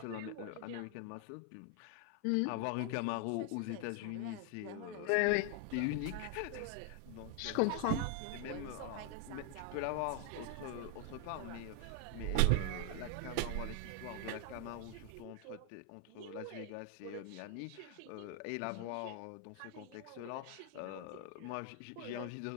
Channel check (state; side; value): different; both; correlation 0.00